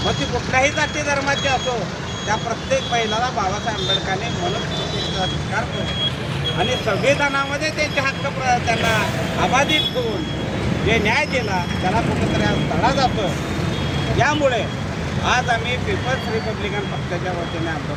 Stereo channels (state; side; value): identical; both; correlation 1.00